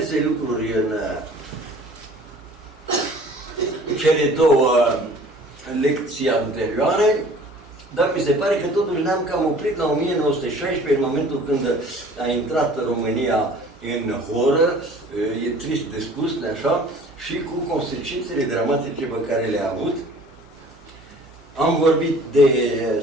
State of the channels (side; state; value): right; noise; hum, 25 dB below the sound